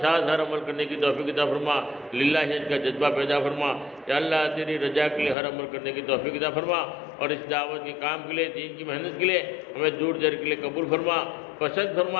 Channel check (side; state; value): right; drops out; at 5.4 s